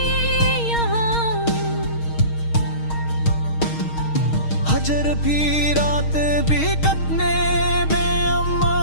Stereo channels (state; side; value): late; right; 6.4 ms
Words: यहाँ। हजर भी रात भी कटने बेअम्मा